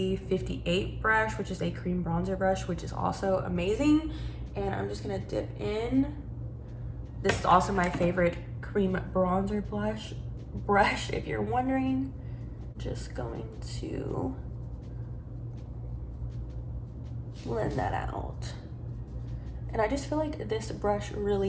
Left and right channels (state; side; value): identical; both; correlation 1.00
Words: brush, which is a cream bronzer brush, which is also amazing. And I'm just gonna dip in. This is also my favorite cream bronzer brush, if you're wondering. Just going to blend that out. And I just feel like this brush